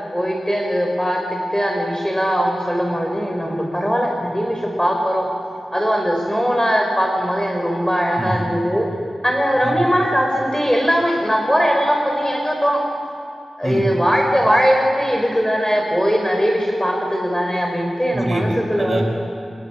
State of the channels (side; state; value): both; normal; correlation 0.96